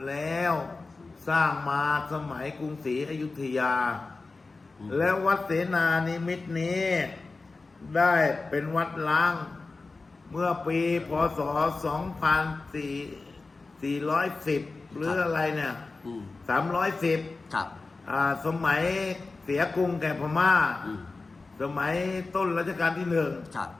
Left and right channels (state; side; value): quieter; right; 3.7 dB